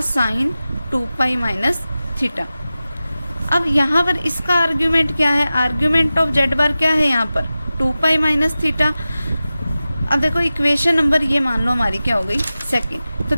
sine 2 pi minus theta. अब यहाँ पर इसका आर्ग्यूमेंट क्या है, आर्ग्यूमेंट ऑफ जेड बार क्या है यहाँ पर 2 पाई माइनस थीटा। अब देखो इक्वेशन नंबर ये मान लो हमारी क्या हो गई, सेकंड। तो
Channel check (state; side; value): inverted; both; correlation -0.95